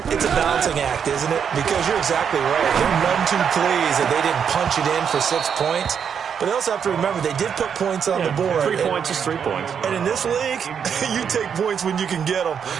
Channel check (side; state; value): left; quieter; 7.4 dB